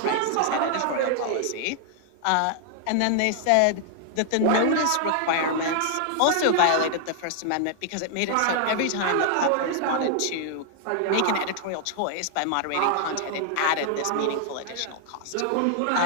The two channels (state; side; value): different; both; correlation 0.00